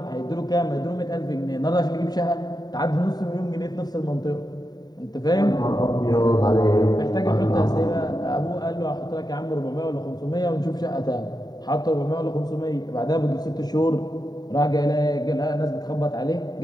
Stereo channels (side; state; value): right; late; 0.20 ms